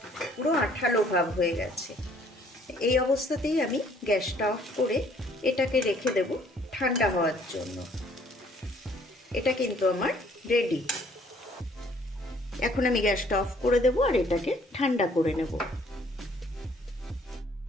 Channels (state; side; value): normal; both; correlation 0.60